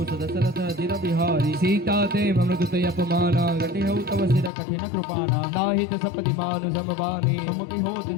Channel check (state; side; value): drops out; right; at 4.5 s